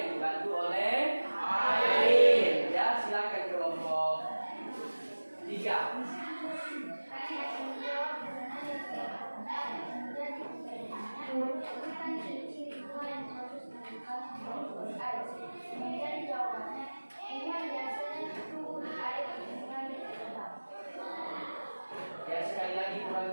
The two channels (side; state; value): both; inverted; correlation -1.00